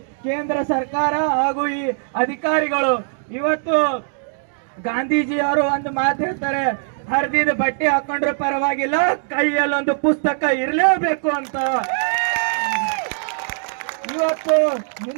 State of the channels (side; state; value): left; silent; digital silence